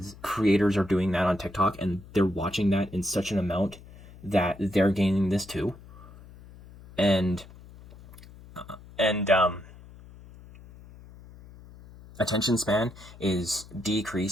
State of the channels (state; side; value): noise; left; hum, 20 dB below the sound